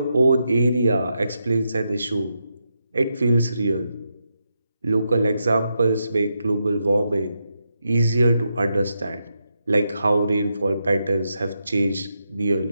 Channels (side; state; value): both; inverted; correlation -0.84